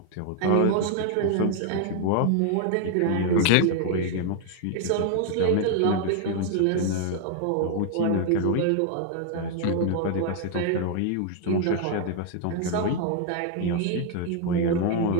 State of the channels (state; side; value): different; both; correlation 0.00